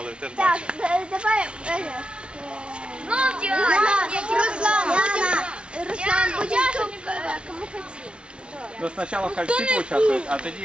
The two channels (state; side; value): late; left; 0.058 ms